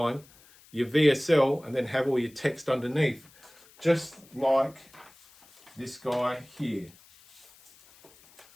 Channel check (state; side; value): noise; left; hiss, 26 dB below the sound